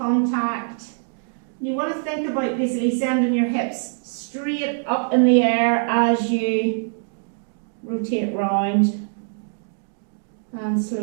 You want to think about basically sending your hips straight up in the air as you rotate round and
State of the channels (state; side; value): silent; left; digital silence